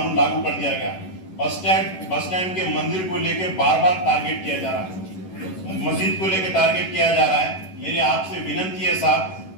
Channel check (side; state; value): right; late; 11 ms